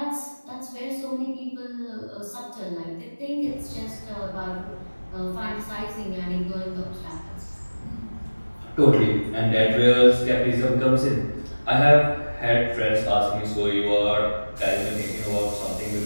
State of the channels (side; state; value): both; inverted; correlation -1.00